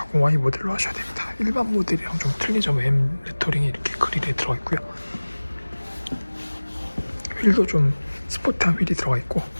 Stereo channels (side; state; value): both; inverted; correlation -1.00